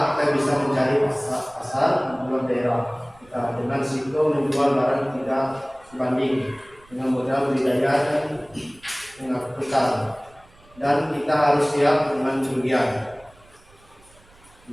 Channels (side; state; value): right; noise; rumble, 28 dB below the sound